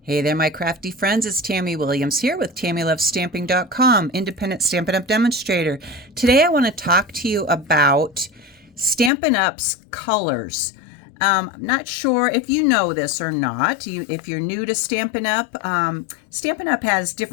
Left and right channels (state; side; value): drops out; right; at 9.1 s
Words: Hey there, my crafty friends. It's Tammy Williams here with TammyLovesStamping.com, independent Stampin' Up! Demonstrator. Today I want to talk to you about Stampin' Up's colors. I'm not sure if you know this or not. If you're new to Stampin' Up, Stampin' Up has